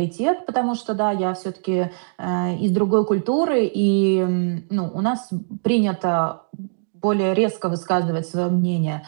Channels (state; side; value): silent; left; digital silence